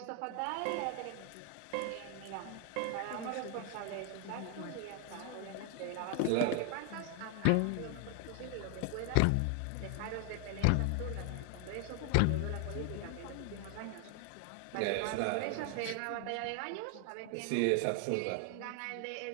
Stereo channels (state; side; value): different; both; correlation 0.00